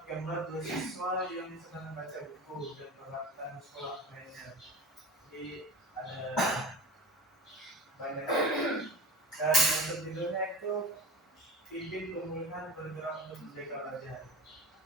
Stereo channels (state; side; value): normal; both; correlation 0.36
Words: gambar dua siswa yang sedang membaca buku dan peralatan sekolah lainnya. Jadi ada banyak. Dan untuk judulnya itu pimpin pemulihan bergerak untuk menjaga wajah.